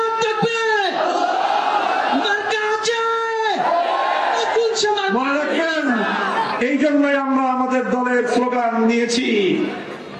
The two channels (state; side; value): identical; both; correlation 1.00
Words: মনে রাখবেন, এই জন্যই আমরা আমাদের দলের স্লোগান নিয়েছি,